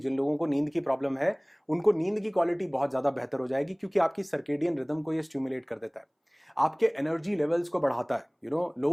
लोगों को नींद की प्रॉब्लम है उनको नींद की क्वालिटी बहुत ज्यादा बेहतर हो जाएगी, क्योंकि आपकी सर्केडियन रिदम को ये स्टिमुलेट कर देता है। आपके एनर्जी लेवल्स को बढ़ाता है,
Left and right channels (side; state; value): both; identical; correlation 1.00